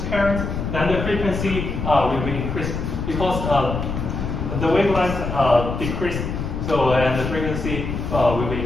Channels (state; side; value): noise; left; rumble, 4 dB below the sound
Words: current, then the frequency will be increased because the wavelength decrease. So and the frequency will be